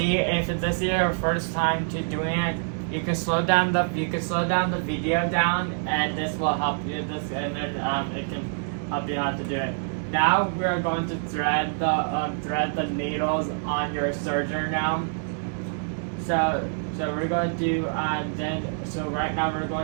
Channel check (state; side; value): silent; left; 61 dB below the other